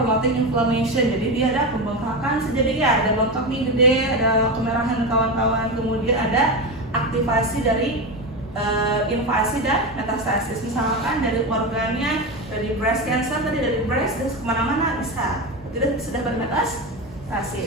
inflammation. Jadi dia ada pembengkakan, jadi ya ada bengkak nih gede, ada kemerahan dan kawan-kawan. Kemudian ada aktivasi dari invasi dan metastasis, misalkan dari organnya, dari breast cancer tadi, dari breast dan kemana-mana bisa, tidak sudah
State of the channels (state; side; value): normal; both; correlation 0.18